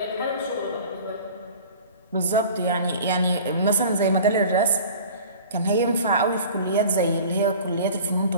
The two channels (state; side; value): inverted; both; correlation -0.43